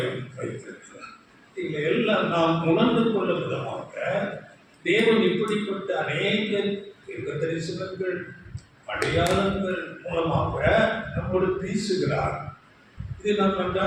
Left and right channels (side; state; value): both; identical; correlation 1.00